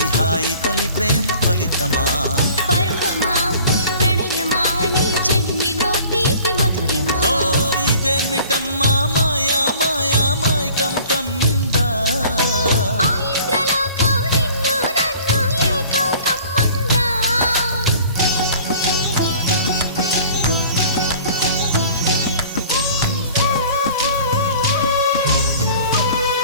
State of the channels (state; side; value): inverted; both; correlation -0.49